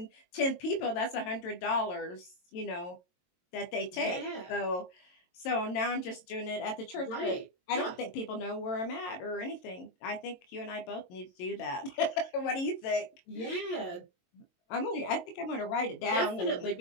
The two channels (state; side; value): late; right; 22 ms